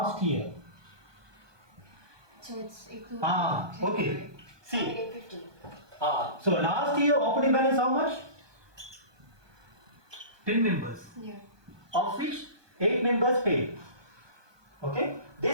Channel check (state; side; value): late; left; 1.2 ms